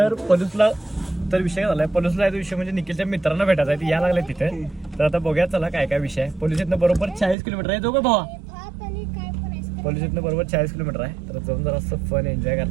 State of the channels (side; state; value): left; drops out; at 7.4 s